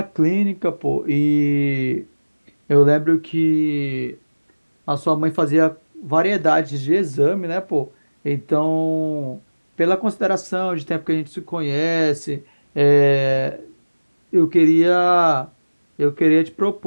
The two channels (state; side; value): inverted; both; correlation -1.00